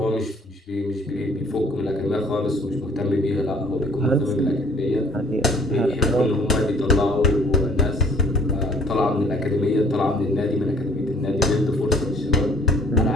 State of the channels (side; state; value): both; normal; correlation 0.56